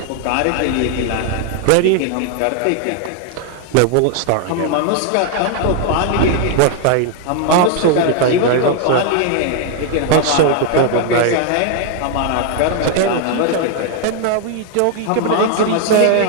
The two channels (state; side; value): different; both; correlation 0.00